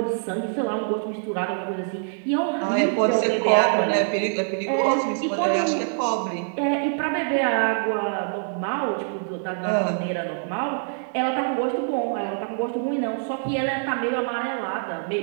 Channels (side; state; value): left; silent; 62 dB below the other